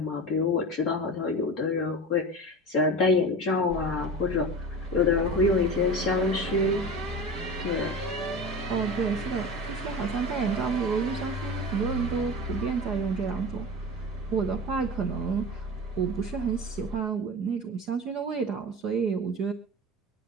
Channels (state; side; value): normal; both; correlation 0.30